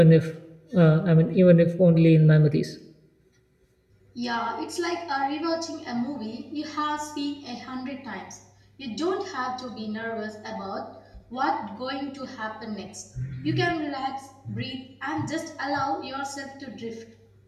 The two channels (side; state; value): both; identical; correlation 1.00